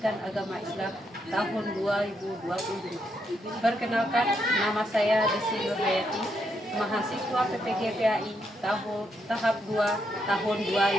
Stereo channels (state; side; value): normal; both; correlation 0.78